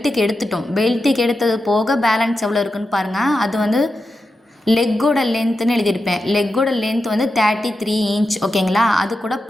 எடுத்துட்டோம். பெல்ட்டுக்கு எடுத்தது போக பேலன்ஸ் எவ்வளோ இருக்குன்னு பாருங்கள். அது வந்து லெக்கோட லென்த்துன்னு எழுதியிருப்பேன். லெக்கோட லென்த் வந்து 33 இன்ச் ஓகேங்களா. அது கூட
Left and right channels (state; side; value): normal; both; correlation 0.90